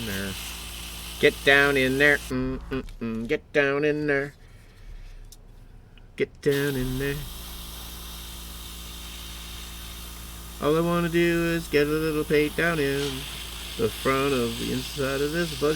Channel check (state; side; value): identical; both; correlation 1.00